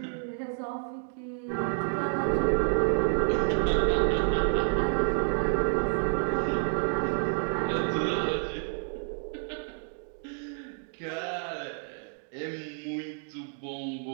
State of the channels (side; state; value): left; silent; 58 dB below the other